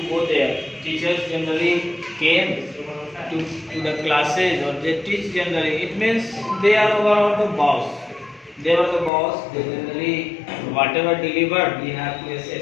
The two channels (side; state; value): right; drops out; at 9.1 s